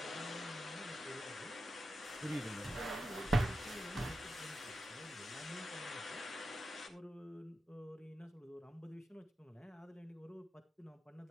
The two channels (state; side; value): normal; both; correlation 0.89